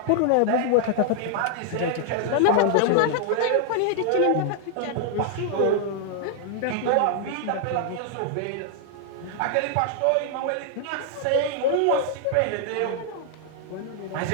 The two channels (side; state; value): both; different; correlation 0.00